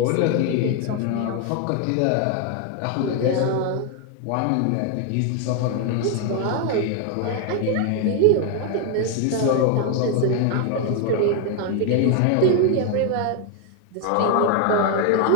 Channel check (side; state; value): both; different; correlation 0.01